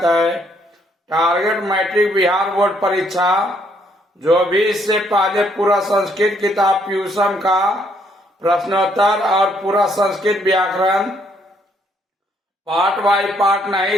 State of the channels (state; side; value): normal; both; correlation 0.69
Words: है। टारगेट मैट्रिक बिहार बोर्ड परीक्षा जो भी इससे पहले पूरा संस्कृत किताब ट्यूशन का प्रश्नोत्तर और पूरा संस्कृत व्याकरण पार्ट बाय पार्ट